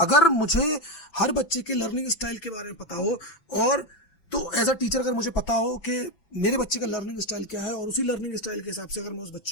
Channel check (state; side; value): late; right; 6.0 ms